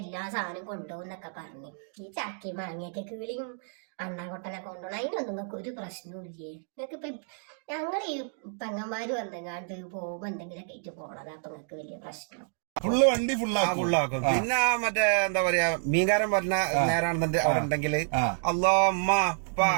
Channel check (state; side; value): silent; left; 58 dB below the other